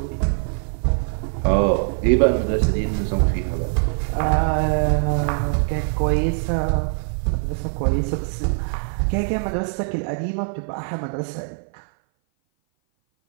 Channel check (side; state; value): left; silent; 58 dB below the other